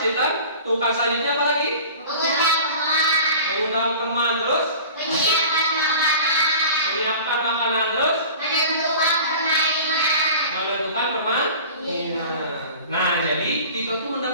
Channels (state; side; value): inverted; both; correlation -0.41